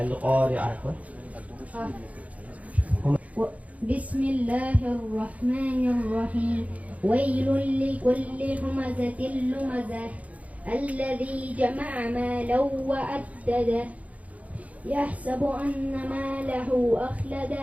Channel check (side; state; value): left; late; 0.069 ms